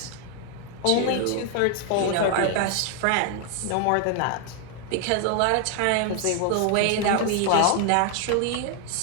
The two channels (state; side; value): different; both; correlation 0.00